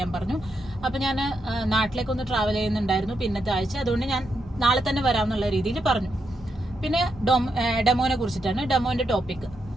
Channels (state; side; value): normal; both; correlation 0.82